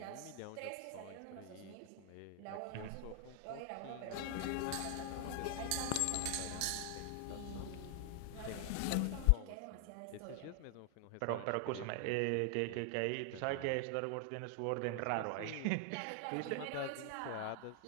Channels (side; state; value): both; different; correlation 0.00